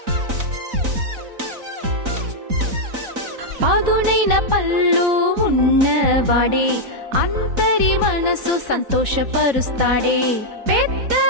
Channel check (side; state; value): left; late; 4.0 ms